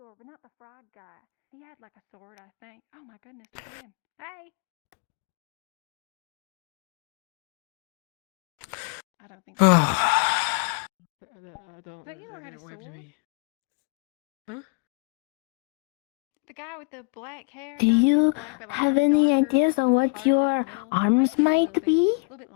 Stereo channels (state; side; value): quieter; right; 33.0 dB